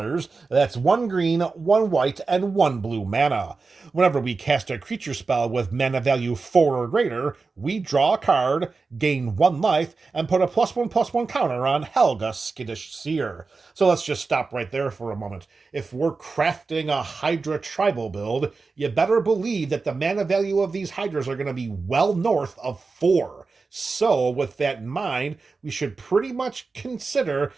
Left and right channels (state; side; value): quieter; left; 4.2 dB